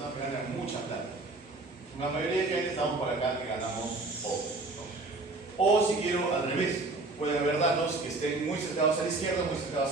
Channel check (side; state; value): left; quieter; 3.3 dB